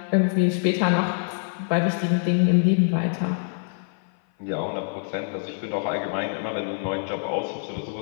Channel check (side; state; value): right; silent; 56 dB below the other